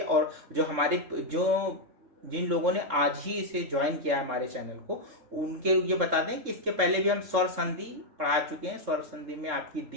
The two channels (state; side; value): late; left; 3.6 ms